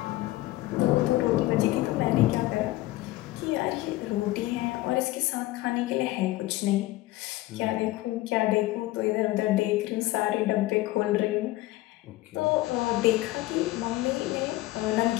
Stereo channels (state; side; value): quieter; right; 17.8 dB